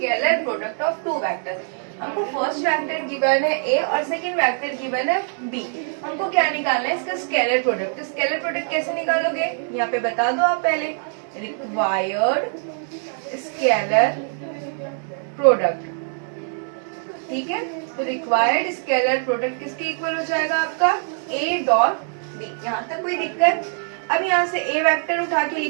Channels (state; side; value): silent; left; 58 dB below the other